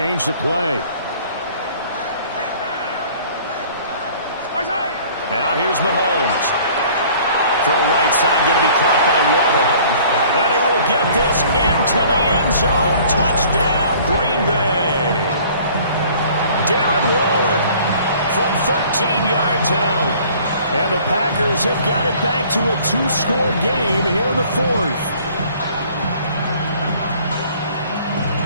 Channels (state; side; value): inverted; both; correlation -0.53